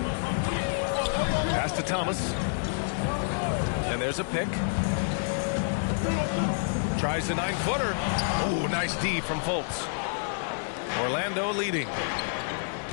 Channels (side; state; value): right; silent; digital silence